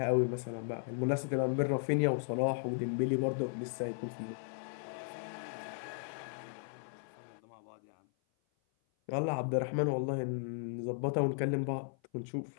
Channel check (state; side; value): silent; right; 54 dB below the other